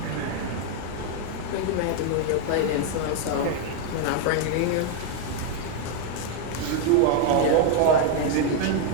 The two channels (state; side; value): different; both; correlation 0.00